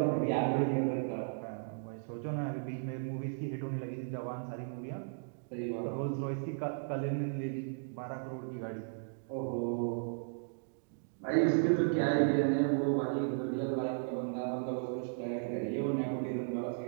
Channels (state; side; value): silent; left; digital silence